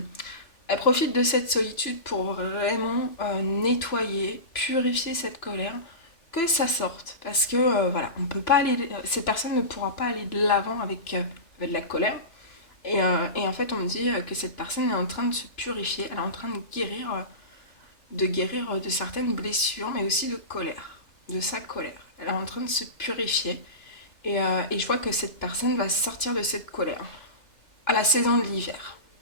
elle profite de cette solitude pour vraiment nettoyer, purifier cette colère, que ça sorte. Parce que voilà, on peut pas aller, cette personne ne pourra pas aller de l'avant avec de la colère. Et en fait, on me dit que cette personne est en train de se purifier, elle est en train de guérir de certaines blessures, mais aussi de colère, de sa colère. Elle est en train de se purifier. Et je vois que cette personne va sortir de cette colère à la saison de l'hiver.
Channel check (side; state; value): right; late; 2.9 ms